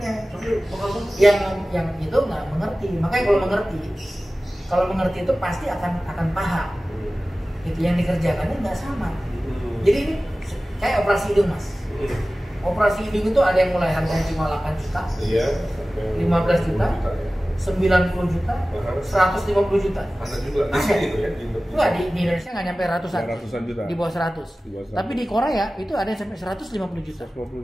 Yang itu nggak mengerti. Makanya kalau mengerti itu pasti akan paham. Itu yang dikerjakannya nggak sama. Jadi ini kayak operasi hidung Mas. Operasi hidung itu ada yang mulai harganya cuma 8 juta, 15 juta, 90 juta, 150 juta. Ada juga gitu ya? Enggak, di Indonesia nggak nyampe ratusan juta. Di bawah 100. Tapi di Korea itu ada yang sampai 150 juta.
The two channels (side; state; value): both; normal; correlation 0.97